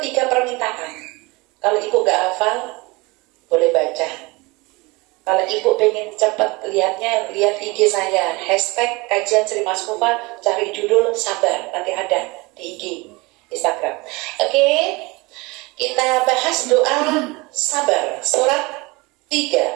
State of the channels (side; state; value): left; quieter; 24.7 dB